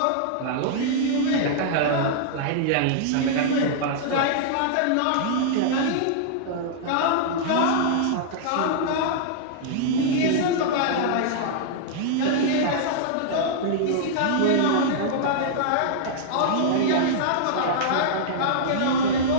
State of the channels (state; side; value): different; both; correlation -0.02